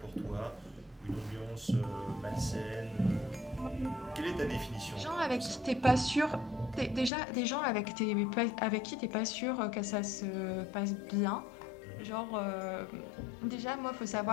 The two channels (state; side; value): drops out; right; at 7.1 s